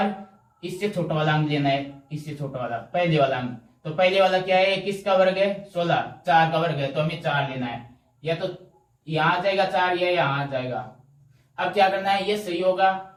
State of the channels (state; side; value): identical; both; correlation 1.00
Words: इससे छोटा वाला अंक लेना है, इससे छोटा वाला पहले वाला अंक। तो पहले वाला क्या है, किसका वर्ग है 16, 4 का वर्ग है। तो हमें 4 लेना है। या तो यहाँ आ जाएगा 4 या यहाँ आ जाएगा। अब क्या करना है, ये सही होगा